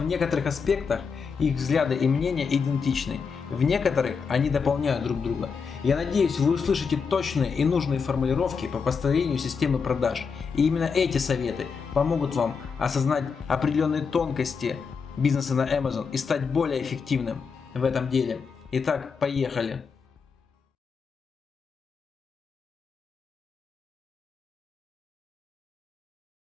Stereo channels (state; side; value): quieter; right; 5.6 dB